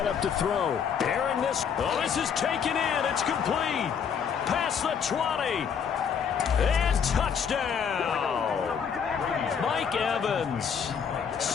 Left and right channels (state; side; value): quieter; right; 7.1 dB